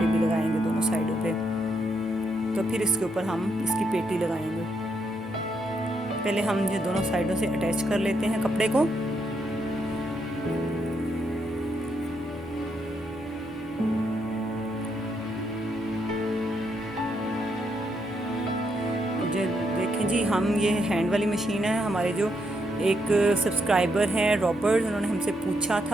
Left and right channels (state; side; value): normal; both; correlation 0.78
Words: भी लगाएंगे दोनों साइडों पे। तो फिर इसके ऊपर हम इसकी पेटी लगाएंगे। पहले हम ये दोनों साइडों से अटैच कर लेते हैं कपड़े को। देखें जी, हम ये हैंड वाली मशीन है। हमारे जो एक सब्सक्राइबर हैं रॉबर्ट, उन्होंने हमसे पूछा